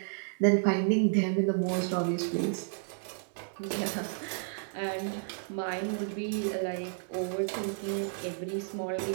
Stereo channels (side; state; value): left; silent; 56 dB below the other